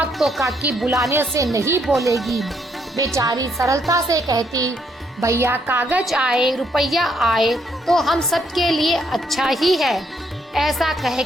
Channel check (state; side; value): normal; both; correlation 0.72